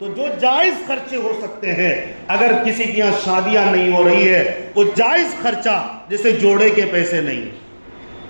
جو جائز خرچے ہو سکتے ہیں، اگر کسی کی یہاں شادیاں نہیں ہو رہی ہے، وہ جائز خرچہ جیسے جوڑے کے پیسے نہیں،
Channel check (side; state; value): both; inverted; correlation -1.00